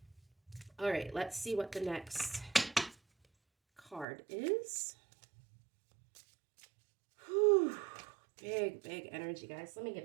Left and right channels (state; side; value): drops out; left; at 4.0 s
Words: All right, let's see what the next card is. Whew, big energy, guys. Let me